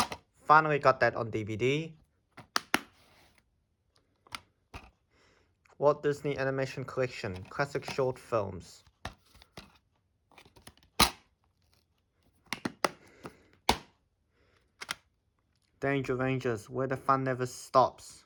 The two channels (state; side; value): identical; both; correlation 1.00